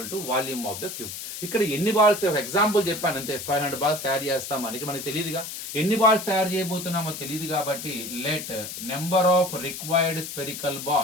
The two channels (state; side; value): noise; left; hiss, 8 dB below the sound